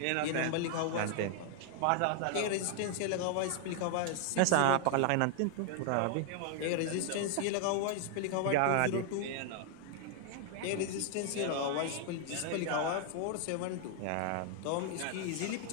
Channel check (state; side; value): different; both; correlation 0.00